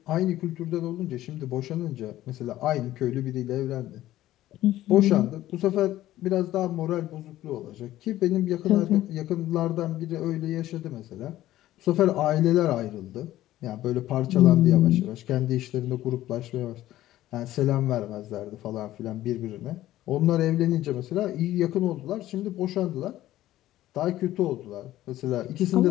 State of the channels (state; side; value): quieter; right; 14.5 dB